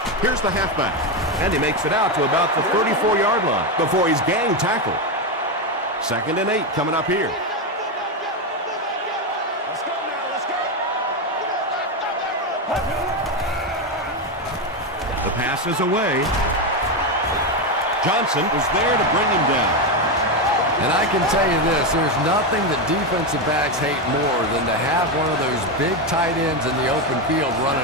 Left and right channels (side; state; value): both; normal; correlation 0.10